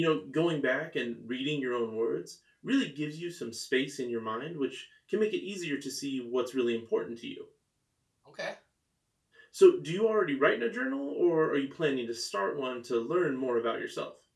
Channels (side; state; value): both; identical; correlation 1.00